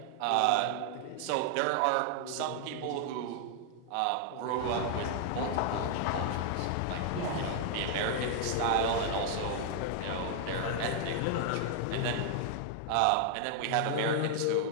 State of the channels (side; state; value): both; different; correlation 0.00